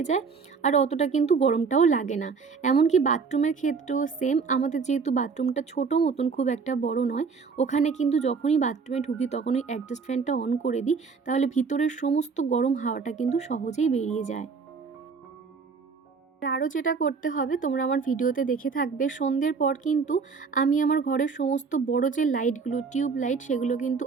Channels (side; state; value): left; quieter; 5.2 dB